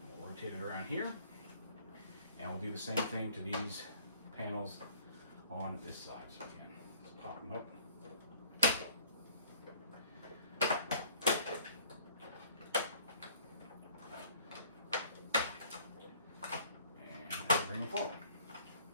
We'll rotate it around here, and we'll do the same thing to these panels on this side. So again, let's pop them up. And bring them forward.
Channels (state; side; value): inverted; both; correlation -0.56